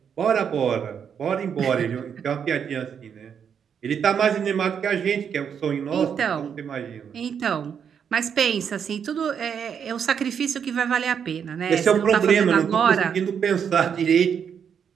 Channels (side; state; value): left; quieter; 7.5 dB